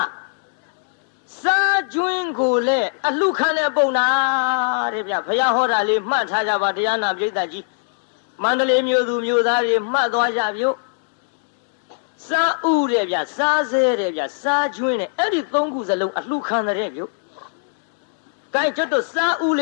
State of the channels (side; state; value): right; silent; digital silence